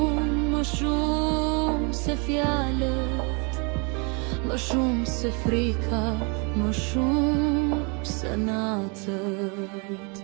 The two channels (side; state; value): left; quieter; 33.8 dB